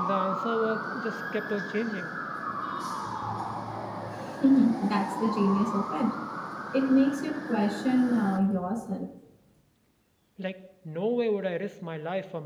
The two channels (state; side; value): identical; both; correlation 1.00